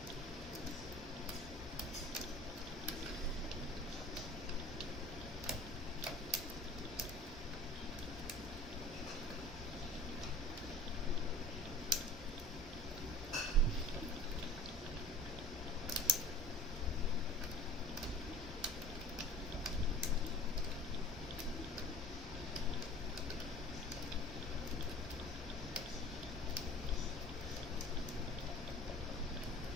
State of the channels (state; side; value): normal; both; correlation 0.44